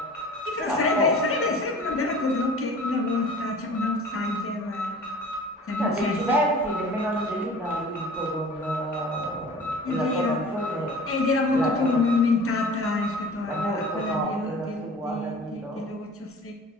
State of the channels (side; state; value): both; normal; correlation 0.43